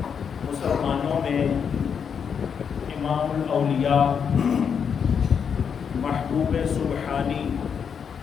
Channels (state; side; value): quieter; right; 7.0 dB